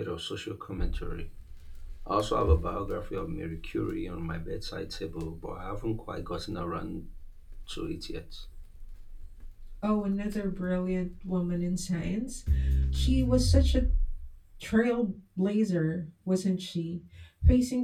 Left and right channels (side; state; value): both; identical; correlation 1.00